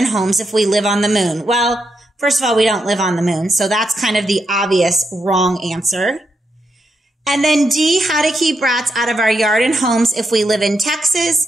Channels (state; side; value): normal; both; correlation 0.82